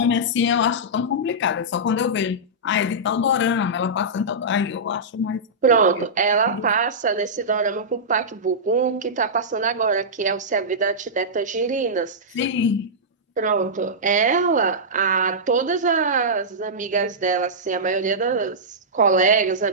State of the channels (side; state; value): both; normal; correlation -0.13